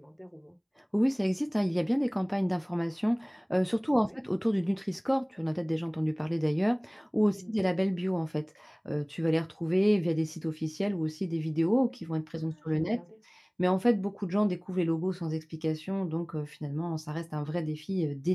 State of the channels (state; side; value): identical; both; correlation 1.00